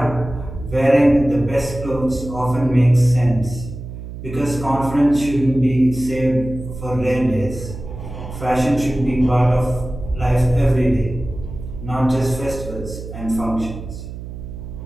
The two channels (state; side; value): noise; right; hum, 11 dB below the sound